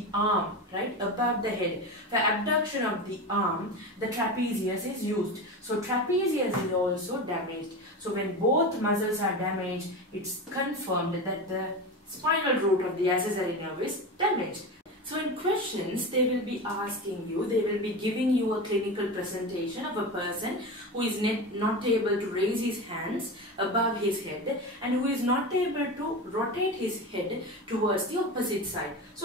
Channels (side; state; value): both; normal; correlation 0.24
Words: arm, right, above the head. For abduction of the arm, the trapezius is used. So trapezius is also damaged. So when both muscles are damaged, it's confirmed that the spinal root of the accessory nerve is damaged. So in questions, they will be asking you, they will be giving you a clinical presentation of a person who is not able to raise his hands above his head and who is not able to rotate his head towards the opposite side.